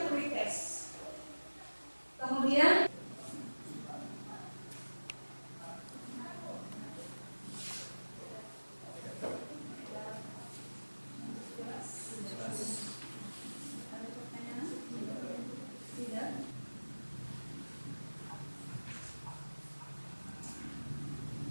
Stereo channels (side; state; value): both; inverted; correlation -1.00